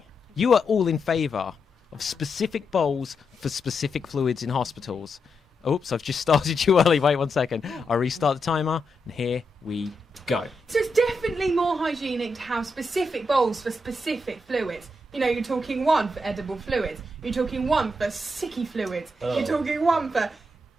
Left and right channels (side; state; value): both; normal; correlation 0.84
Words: you are all in favour of specific bowls for specific fluids in hospitals. Oops, I've just started you early. Wait 1 second. I'll restart the timer, and here we go. So it's definitely more hygienic to have specific bowls for specific fluids. You know, you're talking one for edible fluids. You're talking one for sicky fluids. You're talking one for